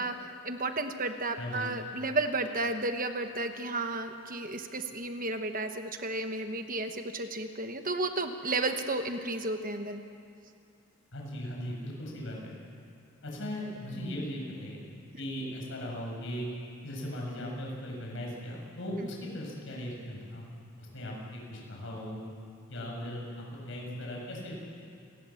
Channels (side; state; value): both; normal; correlation 0.18